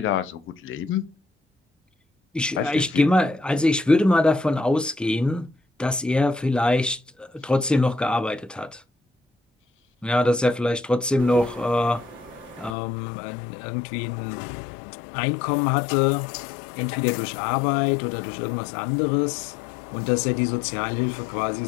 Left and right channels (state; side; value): drops out; right; at 12.8 s